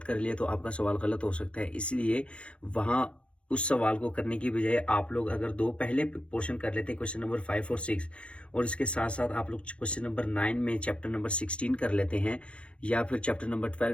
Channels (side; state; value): right; late; 0.059 ms